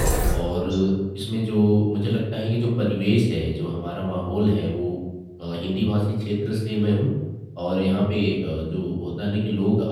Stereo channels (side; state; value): both; identical; correlation 1.00